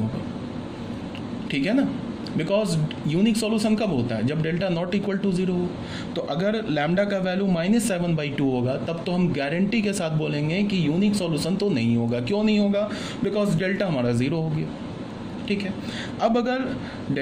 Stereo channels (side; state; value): both; identical; correlation 1.00